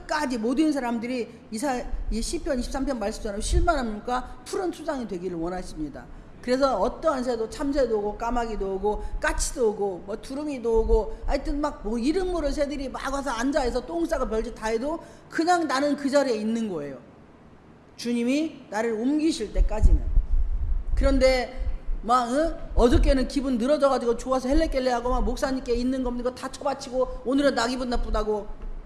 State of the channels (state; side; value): identical; both; correlation 1.00